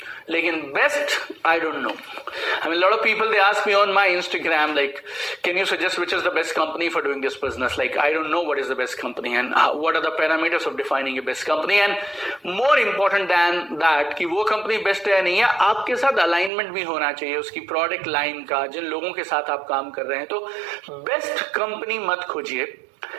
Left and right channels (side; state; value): left; drops out; at 16.5 s